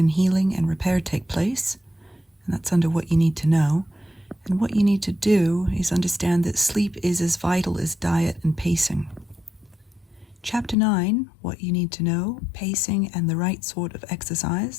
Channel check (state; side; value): drops out; right; at 10.8 s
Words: healing and repair take place, and that's under what you need to know. And what you need to do is understand that sleep is as vital as diet and pacing. Chapter 9, what you need to know, pacing and the right sort of